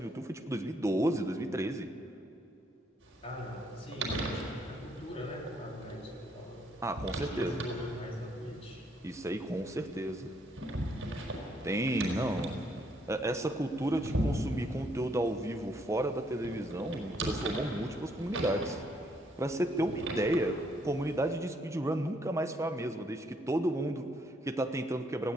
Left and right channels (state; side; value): normal; both; correlation 0.71